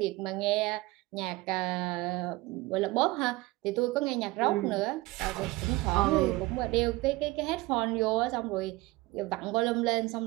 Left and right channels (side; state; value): left; quieter; 20.7 dB